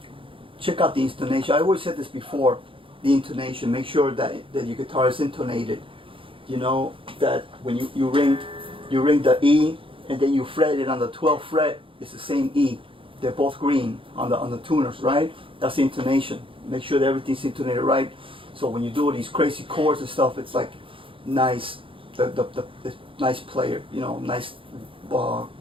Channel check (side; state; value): left; late; 0.25 ms